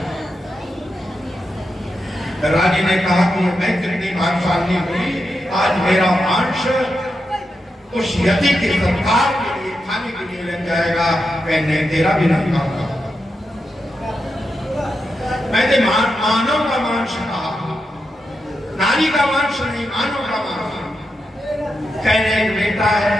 रानी ने कहा कि मैं कितनी भाग्यशाली हुई, आज मेरा मांस उस यति के सत्कार के लिए खाने के लिए लग जाएगा, मैं तेरा भी नहीं खाऊंगा। मैंने मानव का मांस कहा, नारी का मांस नहीं, मानव का मांस। कहने एक बेटा है,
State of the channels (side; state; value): both; normal; correlation 0.87